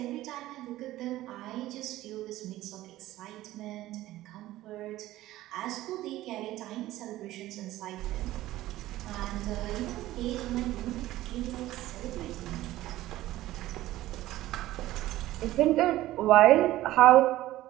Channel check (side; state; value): left; quieter; 15.7 dB